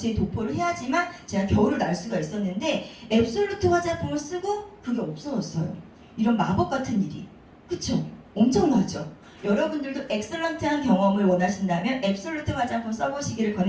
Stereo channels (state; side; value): identical; both; correlation 1.00